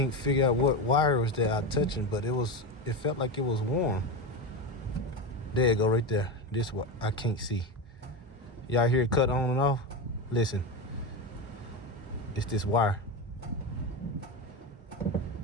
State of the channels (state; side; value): normal; both; correlation 0.17